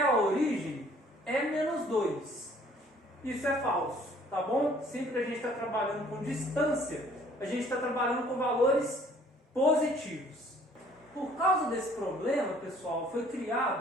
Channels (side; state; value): both; normal; correlation 0.57